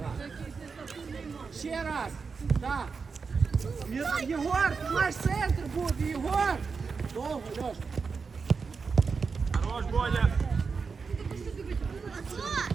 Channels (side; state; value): left; quieter; 5.1 dB